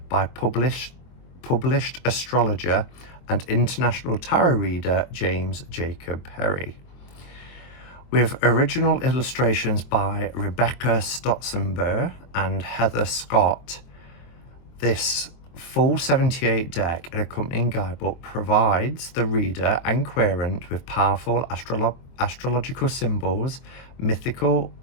by published astrologer and international tarot reader James Jacob Perry, with original illustrations by Rebecca Stotzenberg and Heather Scott. This full 78 deck and accompanying guidebook provides the reader and querent with powerful astrological symbols, mythical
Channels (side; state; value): right; late; 23 ms